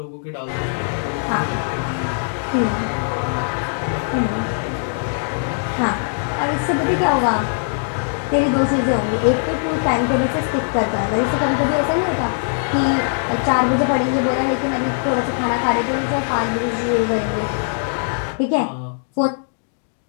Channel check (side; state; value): right; silent; digital silence